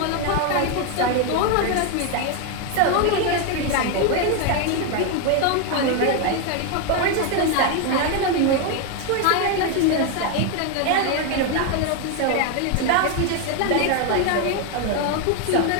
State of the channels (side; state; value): both; different; correlation 0.01